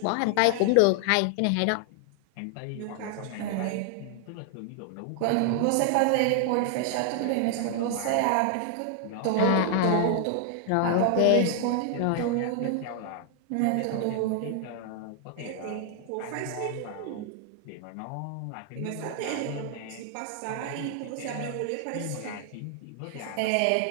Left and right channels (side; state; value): both; different; correlation 0.00